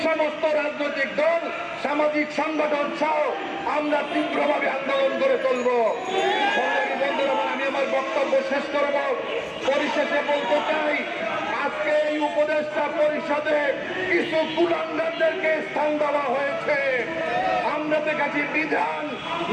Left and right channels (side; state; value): both; identical; correlation 1.00